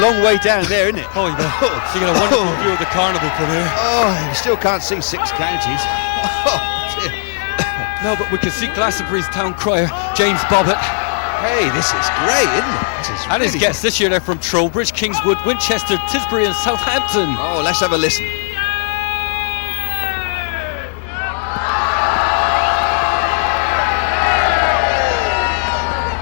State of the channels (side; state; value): right; silent; digital silence